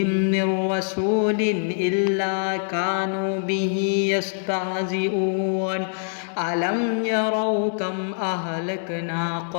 من رسول إلا كانوا به يستهزئون ألم يروا كم أهلكنا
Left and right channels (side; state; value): right; silent; digital silence